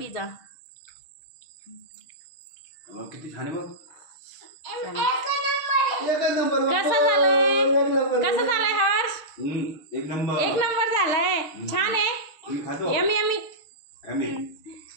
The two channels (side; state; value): right; late; 6.5 ms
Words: किती छान आहे बघ. कसं झालंय? कसं झालंय हर्ष? एक नंबर. एक नंबर झालाय. छान आहे. मी खातो. Yummy yummy. यमी.